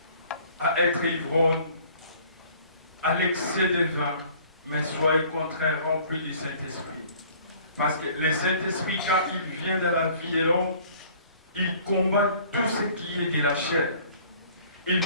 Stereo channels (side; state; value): both; inverted; correlation -0.53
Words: à être ivrogne, à l'excès de vin, mais soyez au contraire rempli du Saint-Esprit. Parce que le Saint-Esprit, quand il vient dans la vie de l'homme, il combat tout ce qui est de la chair. Il